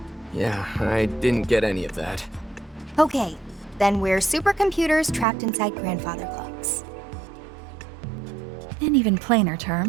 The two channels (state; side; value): drops out; left; at 5.2 s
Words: Yeah, I didn't get any of that. Okay, then we're supercomputers trapped inside grandfather clocks. In even plainer